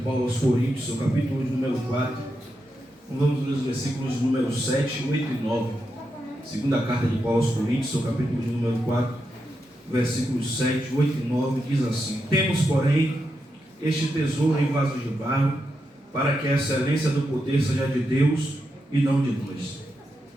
aos Coríntios, seu capítulo número 4. Vamos ler os versículos número 7, 8 e 9. Segunda carta de Paulo aos Coríntios, seu capítulo número 4, versículos 7, 8 e 9, diz assim: Temos, porém, este tesouro em vasos de barro, para que a excelência do poder seja de Deus e não de nós.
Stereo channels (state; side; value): normal; both; correlation 0.85